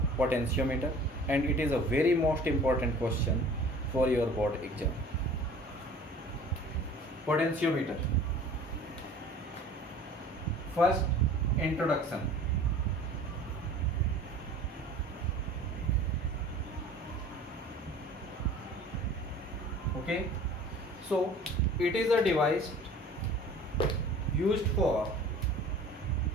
potentiometer and it is a very most important question for your board exam. Potentiometer. First, introduction. Okay, so it is a device used for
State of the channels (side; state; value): both; normal; correlation 0.46